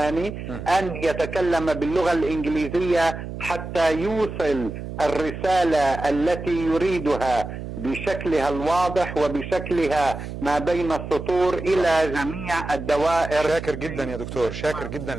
أن يتكلم باللغة الإنجليزية حتى يوصل الرسالة التي يريدها بشكلها الواضح وبشكلها ما بين السطور إلى جميع الدوائر. شاكر جدا يا دكتور، شاكر جدا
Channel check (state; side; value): noise; right; hum, 8 dB below the sound